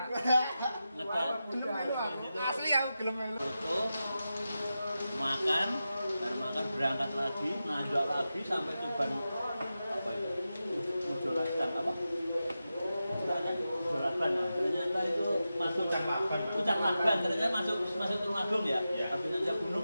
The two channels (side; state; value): both; inverted; correlation -0.92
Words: Ngedak. Asli aku gelem melu. Foto, makan, baru makan berangkat lagi, nanjak lagi sampai Tuban apa itu? Mujolakan apa? Mujolakan. Ternyata itu masuk Pucang Laban. Ternyata masuk Tulungagung ya. Habis nanjak